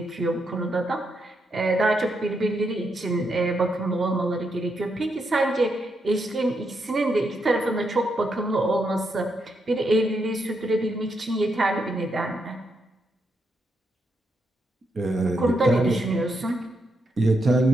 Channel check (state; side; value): normal; both; correlation 0.81